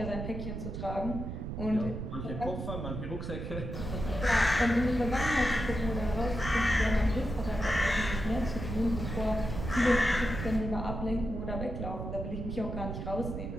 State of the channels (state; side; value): noise; right; rumble, 5 dB below the sound